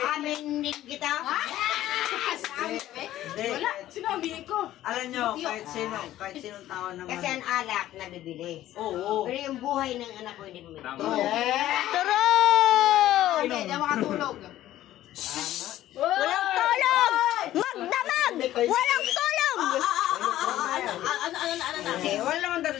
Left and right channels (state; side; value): quieter; right; 13.8 dB